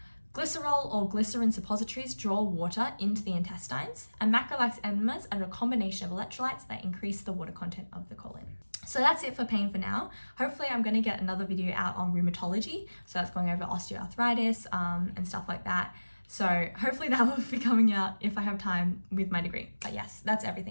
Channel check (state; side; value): inverted; both; correlation -1.00